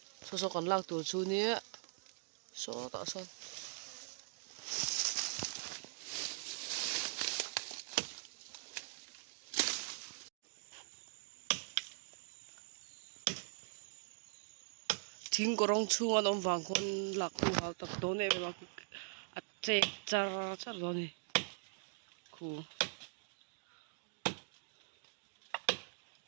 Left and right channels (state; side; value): silent; left; digital silence